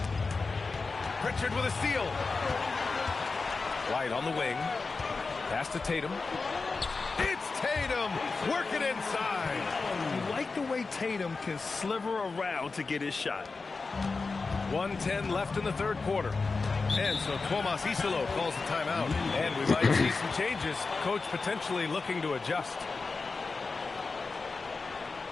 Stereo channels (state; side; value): quieter; right; 4.1 dB